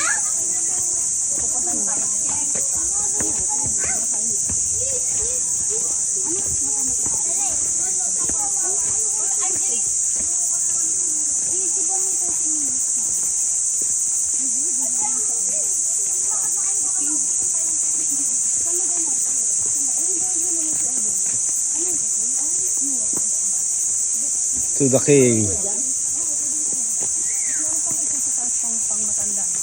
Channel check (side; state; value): both; identical; correlation 1.00